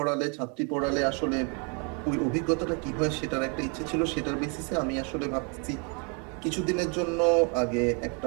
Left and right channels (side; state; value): left; quieter; 35.8 dB